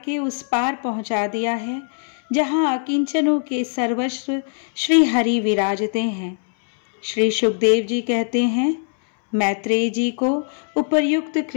उस पार पहुंचा दिया है जहां अकिंचनों के सर्वस्व श्री हरि विराजते हैं। श्री सुखदेव जी कहते हैं, मैत्रेय जी को उपर्युक्त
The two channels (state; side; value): silent; right; 65 dB below the other